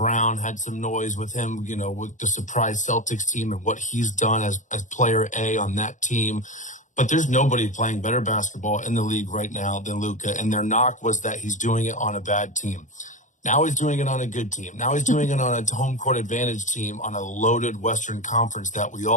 had some noise with him, with the surprise Celtics team and what he's done as player A on that team. But there's nobody playing better basketball in the league right now than Luka. And their knock was that he's doing it on a bad team. Now he's doing it on a good team. Now he's doing it on a home court advantage team on a loaded Western Conference that we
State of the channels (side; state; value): right; late; 0.36 ms